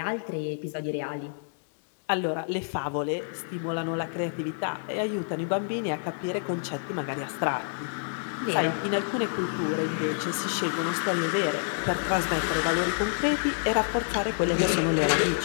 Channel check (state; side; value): silent; right; digital silence